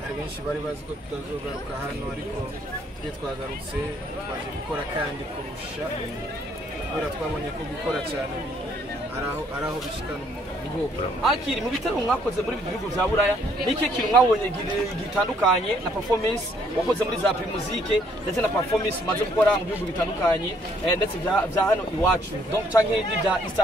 hari benshi bari bazi ko tutazogaruka hano ariko twe twagarutse twaje gukora kandi kurusha kubera twabonye ko gukora cyane ari aho bishikana umuntu. Akiri mu bitaro mwakoze muri bihugu bya Buraya, niki kintu mwabonye gitandukanye na performance wakoze muri za Primusique ndetse na performance umaze gukora mu bihugu bitandukanye ndetse bya hano iwacu donc canke n'ibya East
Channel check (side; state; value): both; normal; correlation 0.66